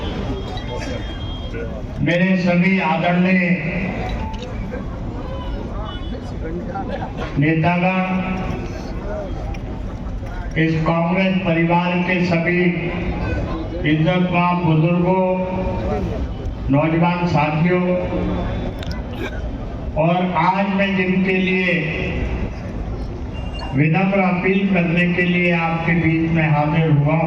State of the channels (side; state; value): both; identical; correlation 1.00